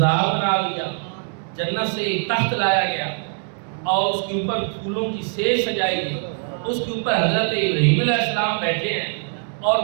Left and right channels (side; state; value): left; silent; 57 dB below the other